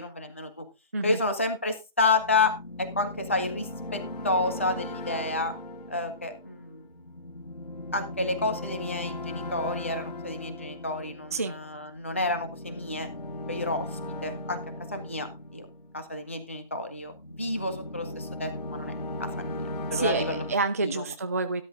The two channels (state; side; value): inverted; both; correlation -0.38